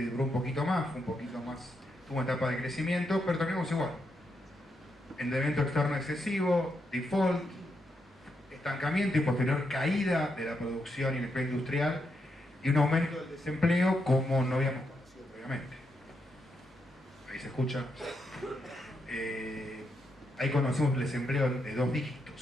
duró un poquito más, tuvo una etapa de crecimiento, pero terminamos igual. Endeudamiento externo excesivo, default, estancamiento y posterior caída de la producción y el empleo industrial y un aumento del desempleo como no habíamos conocido previamente. Ahí se escucha. Ahí conocemos el desempleo de 2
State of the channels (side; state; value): both; normal; correlation 0.82